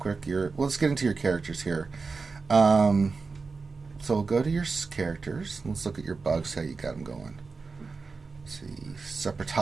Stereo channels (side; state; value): left; quieter; 4.4 dB